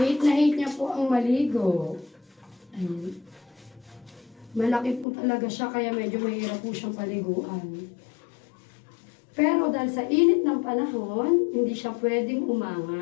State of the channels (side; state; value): right; drops out; at 5.1 s